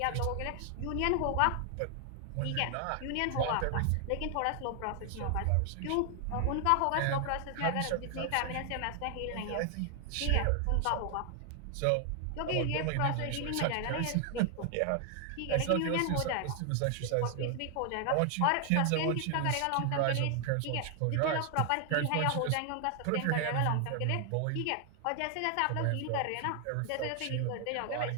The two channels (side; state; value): both; different; correlation 0.00